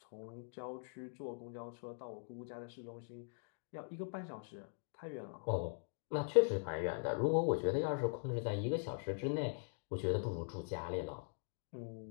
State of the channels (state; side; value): silent; right; digital silence